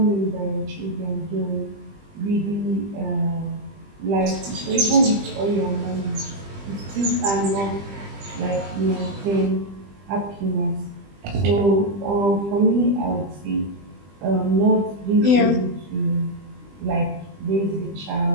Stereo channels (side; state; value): left; late; 20 ms